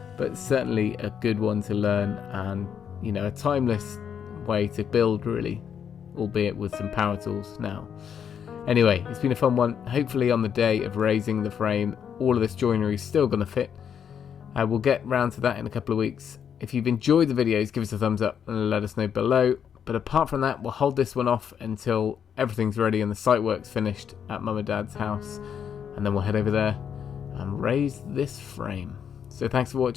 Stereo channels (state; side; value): quieter; right; 8.0 dB